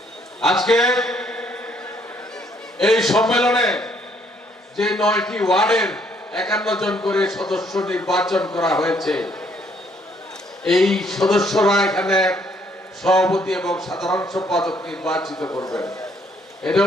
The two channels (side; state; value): both; normal; correlation 0.67